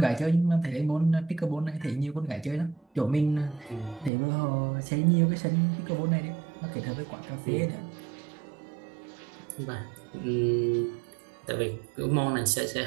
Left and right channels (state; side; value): drops out; left; at 4.1 s